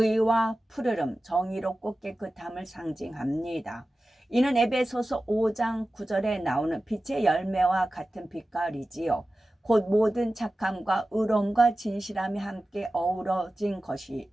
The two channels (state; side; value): normal; both; correlation 0.95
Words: 푸르름, 정의롭고 깨끗함을 상징합니다. 이는 에베소서 5장 9절에 나오는 빛의 열매와 같은 빛깔이지요. 곧 모든 착함과 의로움과 진실함이 함께 어우러진 것이